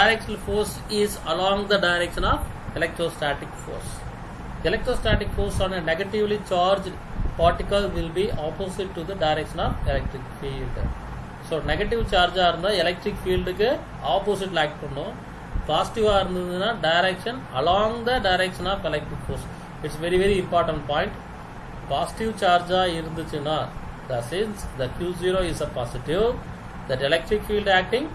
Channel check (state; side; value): identical; both; correlation 1.00